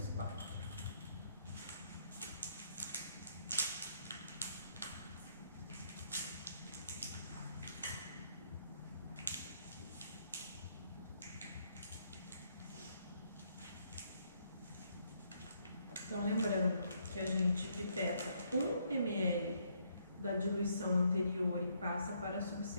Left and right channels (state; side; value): inverted; both; correlation -0.72